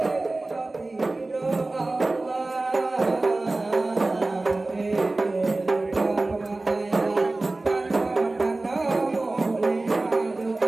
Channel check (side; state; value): left; quieter; 3.1 dB